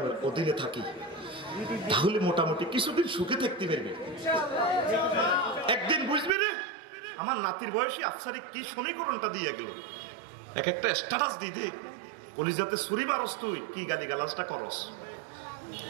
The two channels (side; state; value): left; drops out; at 6.3 s